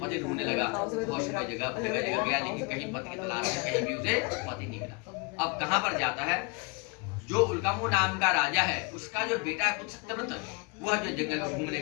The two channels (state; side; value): quieter; right; 31.2 dB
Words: ढूंढने लगा, बहुत समय जगह गया, लेकिन कहीं पति की तलाश में कहीं भी उसे पति नहीं मिला। अब कहाँ पर जाता है, जो उल्कामू नाम का राजा है उसका जो बेटा है सत्यव्रत, वह जो जंगल